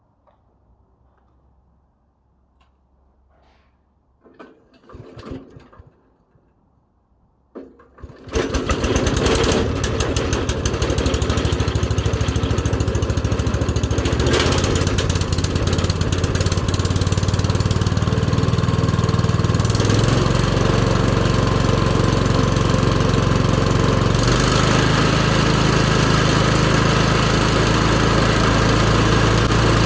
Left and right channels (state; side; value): identical; both; correlation 1.00